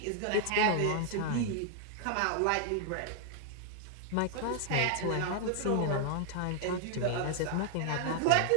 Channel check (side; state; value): both; different; correlation 0.00